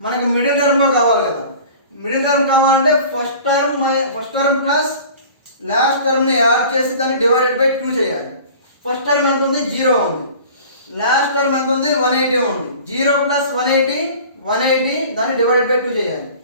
మనకి మిడిల్ టర్మ్లో కావాలి కదా, మిడిల్ టర్మ్ కావాలంటే ఫస్ట్ టర్మ్ ప్లస్ లాస్ట్ టర్మ్ని యాడ్ చేసి దాన్ని డివైడెడ్ బై 2 చేయాలి. ఫస్ట్ టర్మ్ ఎంత ఉంది, 0 ఉంది. లాస్ట్ టర్మ్ ఎంత ఉంది, 180 ఉంది. 0 ప్లస్ 180 దాన్ని డివైడెడ్ బై 2 చేయాలి.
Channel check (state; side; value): inverted; both; correlation -0.43